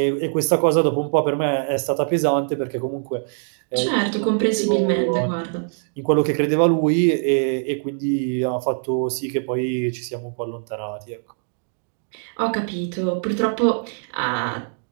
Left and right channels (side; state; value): left; silent; digital silence